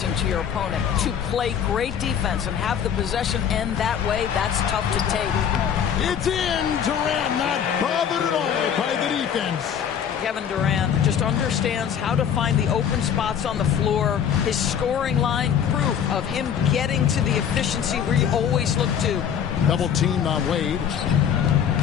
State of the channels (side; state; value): right; quieter; 8.4 dB